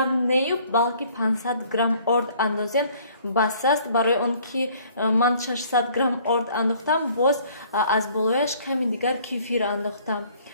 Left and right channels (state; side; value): inverted; both; correlation -0.57